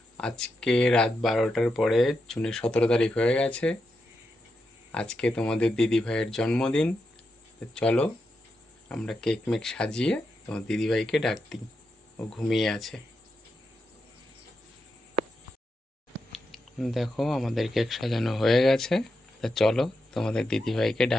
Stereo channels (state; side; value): normal; both; correlation 0.86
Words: আজকে রাত 12টার পরে জুনের 17 তারিখ হয়ে গেছে। আজকে তোমাদের দিদি ভাইয়ের জন্মদিন। তো চলো আমরা কেক মেক সাজিয়ে তোমার দিদি ভাইকে ডাক দিই। ও ঘুমিয়ে আছে। দেখো আমাদের কেক সাজানো হয়ে গেছে। তা চলো তোমাদের দিদি ভাইকে